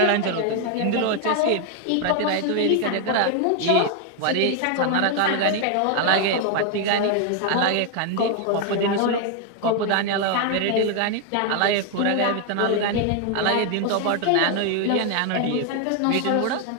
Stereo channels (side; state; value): both; different; correlation 0.01